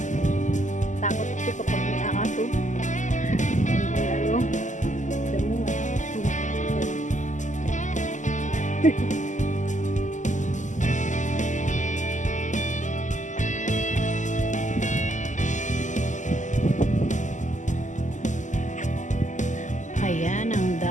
takot ito kapag may aso. Ano? Damo nga. Ayan ang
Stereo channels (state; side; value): late; right; 0.36 ms